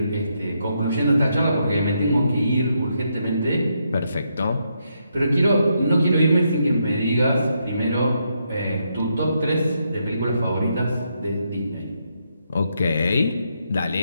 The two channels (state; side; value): inverted; both; correlation -0.79